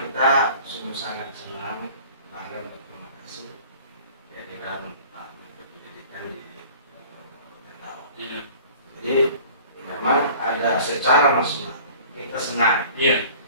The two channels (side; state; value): both; inverted; correlation -0.47